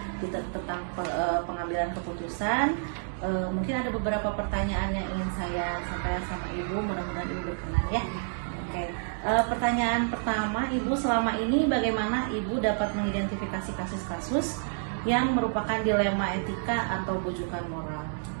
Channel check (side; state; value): left; silent; digital silence